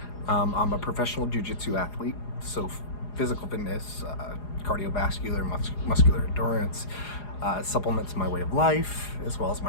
I'm a professional jiu-jitsu athlete, so physical fitness, cardiovascular, muscular endurance, supplements my way of life as well as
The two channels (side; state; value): right; late; 4.8 ms